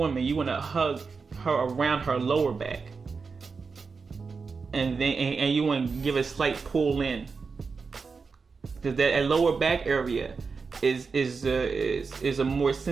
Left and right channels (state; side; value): quieter; left; 4.9 dB